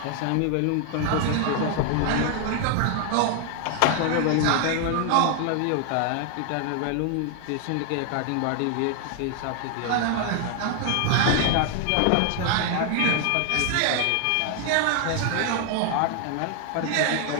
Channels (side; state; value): both; different; correlation 0.00